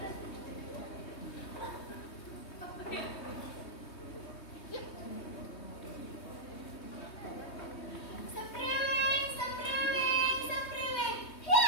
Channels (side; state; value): right; late; 3.2 ms